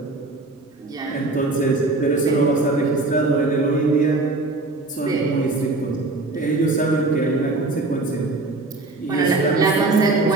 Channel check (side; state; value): left; quieter; 3.2 dB